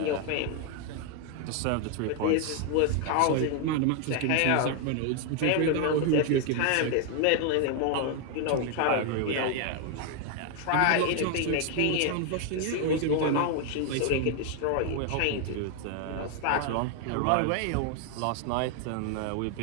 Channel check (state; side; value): different; both; correlation 0.01